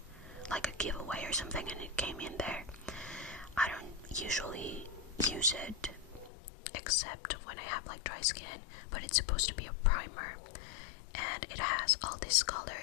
like a giveaway or something, and it came in there. I don't usually use it except when I have like dry skin, but it's supposed to be a primer, and it has all these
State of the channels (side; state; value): right; drops out; at 6.3 s